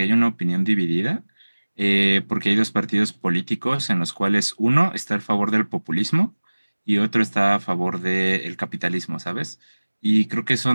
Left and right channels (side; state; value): both; inverted; correlation -1.00